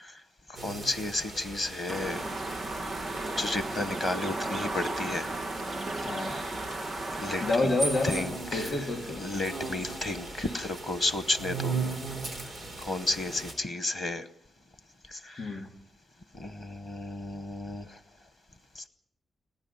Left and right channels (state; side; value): normal; both; correlation 0.78